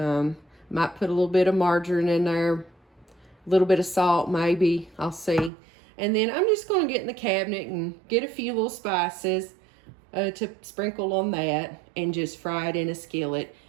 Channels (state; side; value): drops out; left; at 5.5 s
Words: put a little bit of margarine in there, a little bit of salt maybe, I'll see. And then I'm just going to get in the cabinet and get a few little spices to sprinkle on that and just fry it in a skillet.